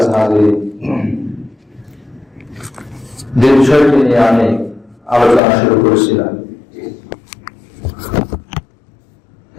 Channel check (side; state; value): right; drops out; at 5.4 s